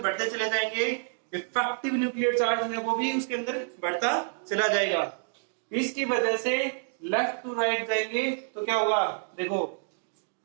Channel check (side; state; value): left; silent; digital silence